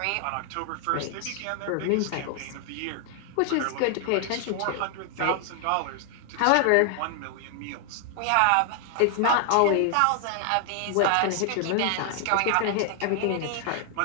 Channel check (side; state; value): both; different; correlation 0.00